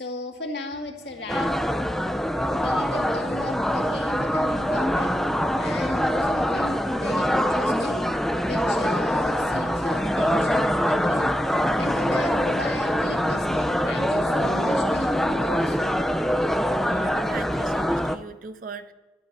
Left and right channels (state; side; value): normal; both; correlation 0.88